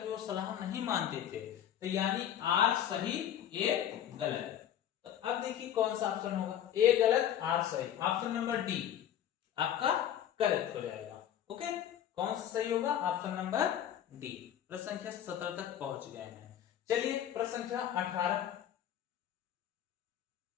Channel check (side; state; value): right; quieter; 10.4 dB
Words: वो सलाह नहीं मानते थे, तो यानी आर सही ए गलत। तो अब देखिए कौन सा ऑप्शन होगा, ए गलत आर सही, ऑप्शन नंबर डी आपका करेक्ट हो जाएगा। ओके, कौन सा सही होगा, ऑप्शन नंबर डी। प्रश्न संख्या 17 तक पहुंच गए हैं। चलिए प्रश्न संख्या 18।